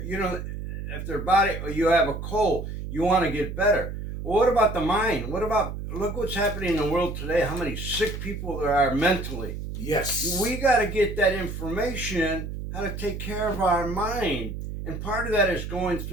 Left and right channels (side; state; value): right; noise; hum, 7 dB below the sound